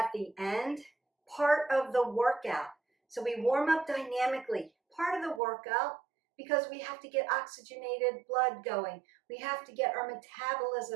the end, part of the workout. So we warm up dynamically, part of the workout, because we have to get oxygenated blood going. We have to get our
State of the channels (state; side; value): drops out; left; at 5.4 s